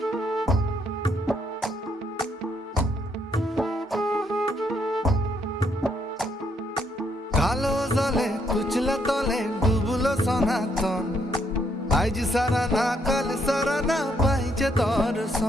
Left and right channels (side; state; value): both; normal; correlation 0.73